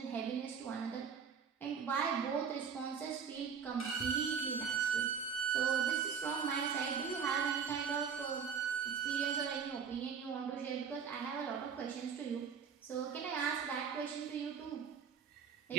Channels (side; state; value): left; quieter; 6.6 dB